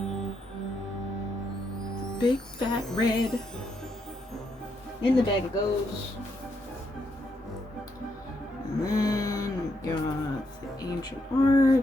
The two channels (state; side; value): normal; both; correlation 0.78